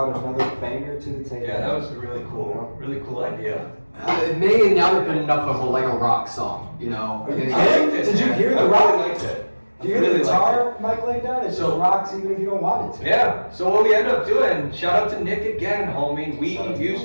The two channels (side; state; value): both; inverted; correlation -1.00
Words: another banger to the table. Yeah, that was a really cool idea. It may not have been enough of a rock song, you know. Are you I kidding? liked it, Did you man. hear I the rock? really liked it. Do you hear really the liked guitar Mike laid down? It just rocks even if you don't want it to. Yeah, so what we ended up doing, shout out to Nick again, homie, we